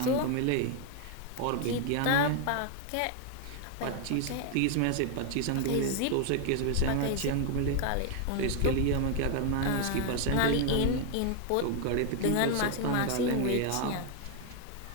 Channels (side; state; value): both; different; correlation 0.01